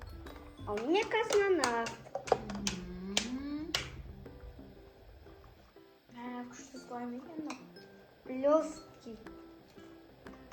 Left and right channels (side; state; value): both; identical; correlation 1.00